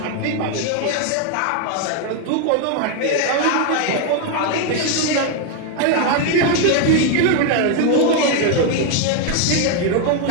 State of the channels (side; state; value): both; different; correlation 0.01